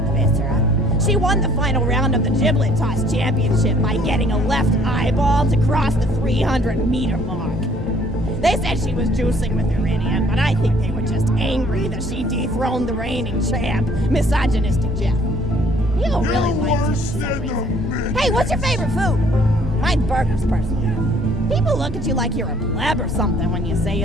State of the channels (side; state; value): both; normal; correlation 0.59